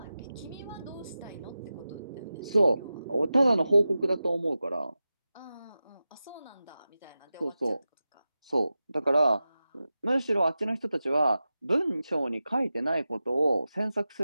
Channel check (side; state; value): both; inverted; correlation -0.93